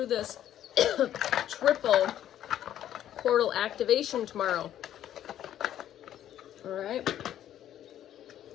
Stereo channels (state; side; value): quieter; right; 11.3 dB